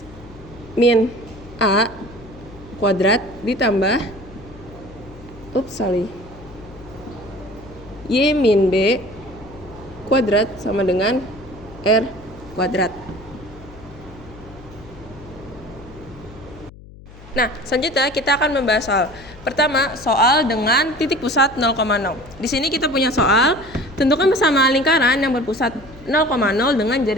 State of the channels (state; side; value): noise; left; hum, 19 dB below the sound